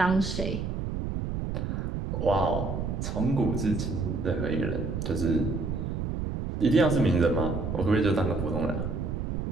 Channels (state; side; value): noise; right; rumble, 3 dB below the sound